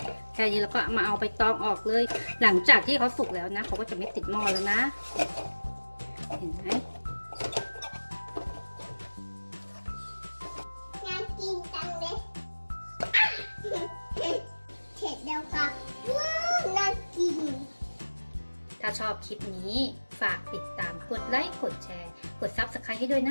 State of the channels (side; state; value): both; inverted; correlation -1.00